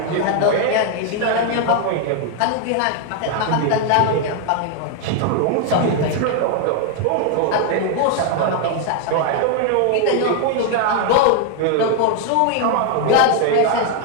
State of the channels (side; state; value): both; different; correlation 0.00